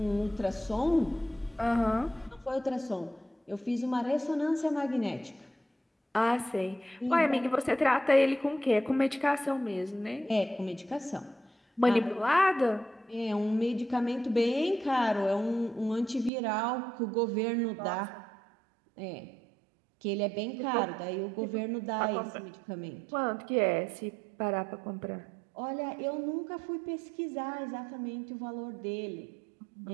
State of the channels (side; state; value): left; drops out; at 16.3 s